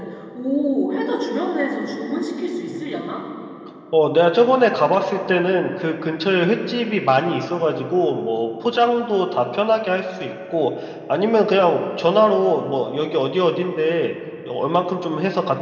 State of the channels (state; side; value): identical; both; correlation 1.00